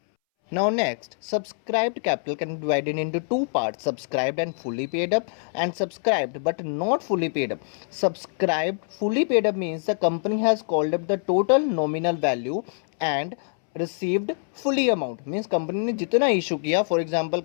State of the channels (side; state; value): right; silent; 62 dB below the other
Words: Now next, subscribed capital can be divided into two parts, subscribed and fully paid up, and subscribed but not fully paid up. Subscribed fully paid up means the company has called up the total nominal value and received fully amount, means company ने जितना issue किया, for example